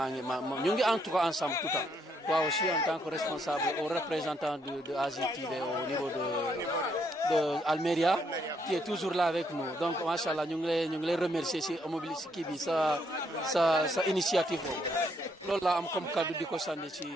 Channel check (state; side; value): normal; both; correlation 0.73